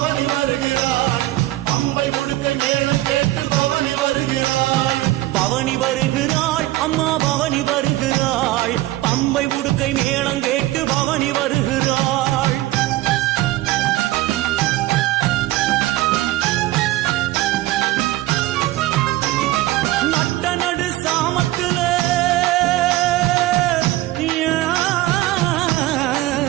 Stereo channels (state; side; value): quieter; left; 16.9 dB